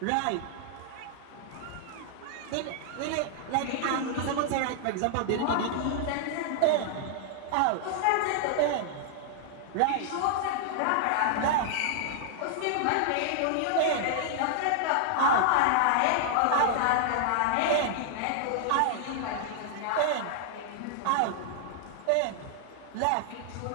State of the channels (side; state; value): both; different; correlation -0.01